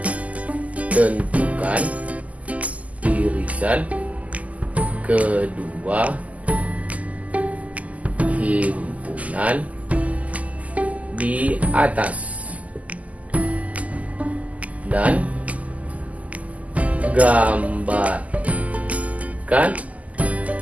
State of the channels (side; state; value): left; late; 0.073 ms